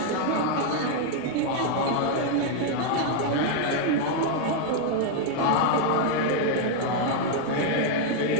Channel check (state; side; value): different; both; correlation 0.00